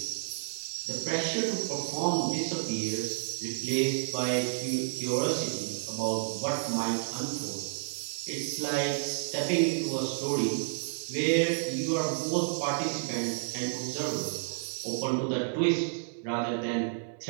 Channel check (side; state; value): left; silent; 57 dB below the other